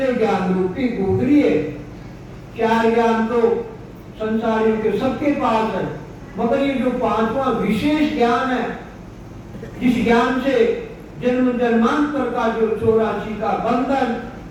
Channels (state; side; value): identical; both; correlation 1.00